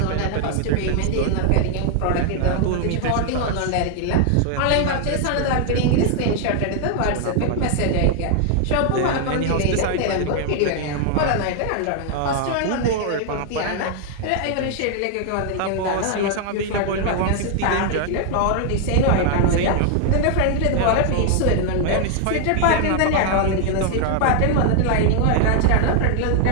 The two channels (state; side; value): different; both; correlation 0.00